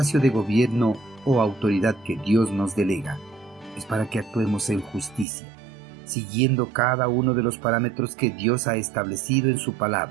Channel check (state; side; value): drops out; left; at 5.2 s